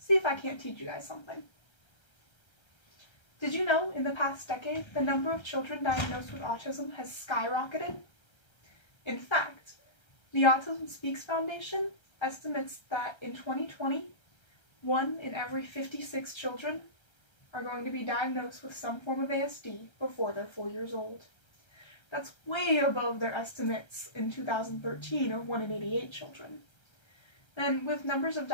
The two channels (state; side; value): late; right; 1.3 ms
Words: if I can't teach you guys something. Did you know in the past decade, the number of children diagnosed with autism has skyrocketed? In fact, the Autism Speaks Foundation estimates that in 2020, 1 in every 56 children are going to be diagnosed with some form of ASD before they're 4 years old. That's way above their estimates in 2013 of 1 in 88 children. And with numbers of